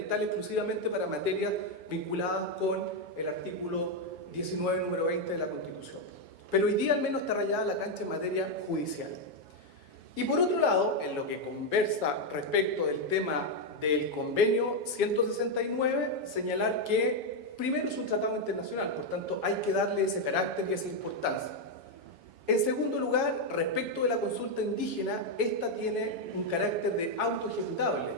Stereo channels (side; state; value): left; late; 7.2 ms